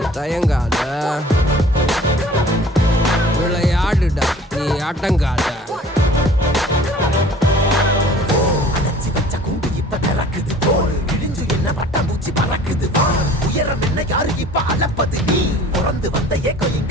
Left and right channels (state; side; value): normal; both; correlation 0.48